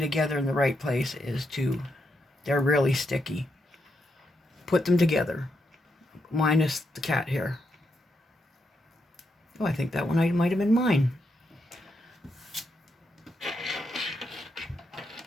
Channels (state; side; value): normal; both; correlation 0.82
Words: together in the right place is they're really sticky. Put them together, minus the cat hair. Oh, I think that one might have been mine.